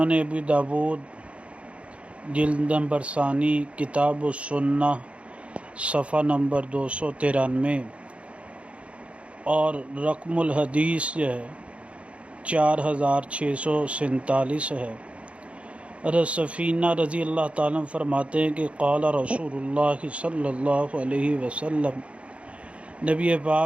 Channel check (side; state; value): left; late; 0.062 ms